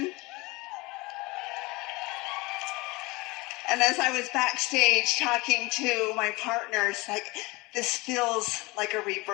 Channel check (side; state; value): right; quieter; 23.5 dB